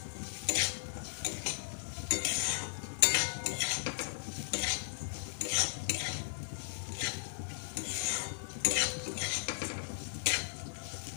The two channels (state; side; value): silent; right; 53 dB below the other